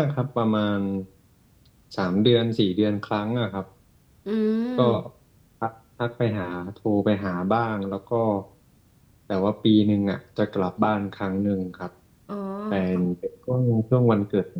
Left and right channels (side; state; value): both; identical; correlation 1.00